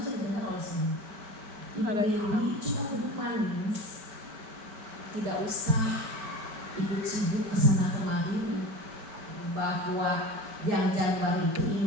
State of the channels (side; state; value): left; late; 5.2 ms